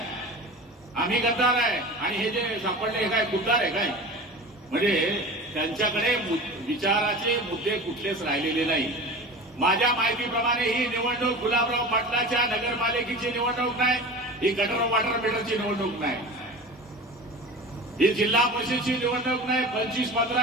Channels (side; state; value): both; normal; correlation 0.34